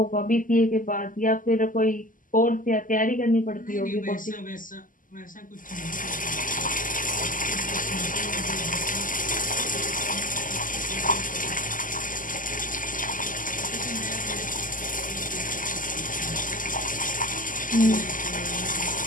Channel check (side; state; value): right; late; 0.39 ms